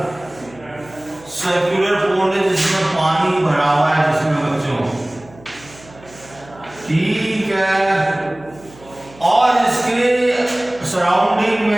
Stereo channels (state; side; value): noise; right; hum, 23 dB below the sound